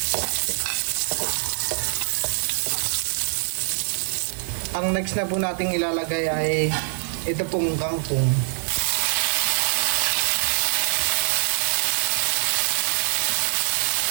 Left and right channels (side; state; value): left; silent; digital silence